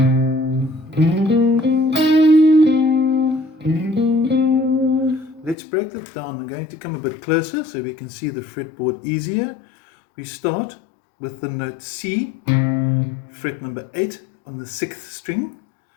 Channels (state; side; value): drops out; right; at 5.6 s